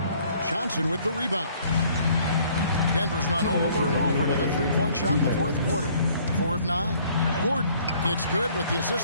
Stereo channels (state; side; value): inverted; both; correlation -0.59